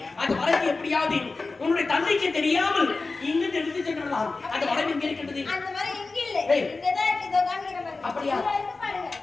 அந்த மரத்தை எப்படியாவது உன்னுடைய தந்தைக்கு தெரியாமல் இங்கு எடுத்து சென்றலாம். அந்த மரம் எங்கே இருக்கின்றது? அந்த மரம் இங்க இல்ல. இங்கதான் இருக்கு. இதோ காமிக்கிறேன். அப்படியா?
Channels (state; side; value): quieter; right; 3.7 dB